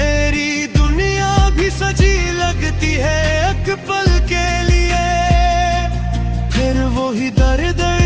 दुनिया भी सजी लगती है एक पल के लिए, फिर वही दर्द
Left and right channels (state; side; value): identical; both; correlation 1.00